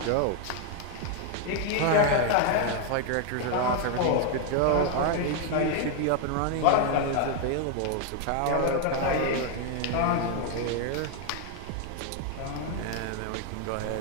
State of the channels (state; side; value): different; both; correlation 0.00